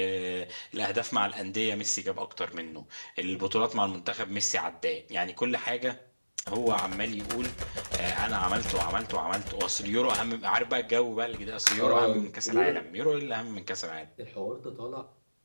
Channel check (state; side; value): inverted; both; correlation -1.00